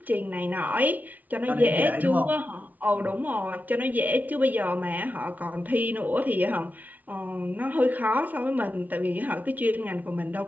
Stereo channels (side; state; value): left; late; 0.077 ms